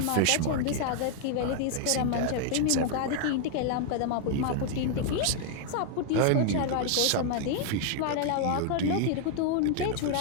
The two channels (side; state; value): both; different; correlation 0.00